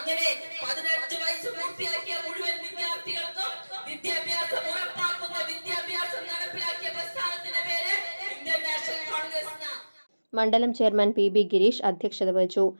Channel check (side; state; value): both; inverted; correlation -1.00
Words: 18 വയസ്സ് പൂർത്തിയാക്കിയ മുഴുവൻ വിദ്യാർത്ഥികൾക്കും വിദ്യാഭ്യാസം ഉറപ്പാക്കുന്ന വിദ്യാഭ്യാസം നടപ്പിലാക്കിയ പ്രസ്ഥാനത്തിന്റെ പേര് ഇന്ത്യൻ നാഷണൽ കോൺഗ്രസ്. മണ്ഡലം ചെയർമാൻ PB ഗിരീഷ് അധ്യക്ഷത വഹിച്ചു.